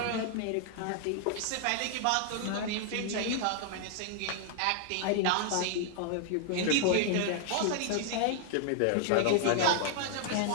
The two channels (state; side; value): different; both; correlation 0.00